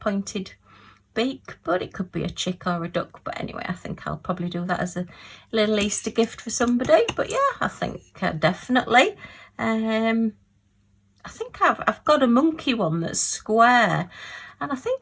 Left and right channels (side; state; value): both; identical; correlation 1.00